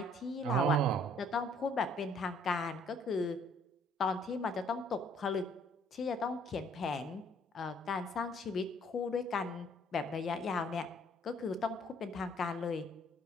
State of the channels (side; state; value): both; normal; correlation 0.61